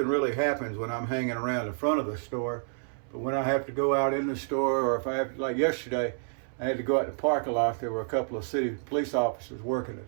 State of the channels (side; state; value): left; silent; 58 dB below the other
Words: really happens when I'm hanging around the front of the store, but when I have to go out in the store, or if I have to, like yesterday, I had to go out in the parking lot. There were a couple of city police officers working a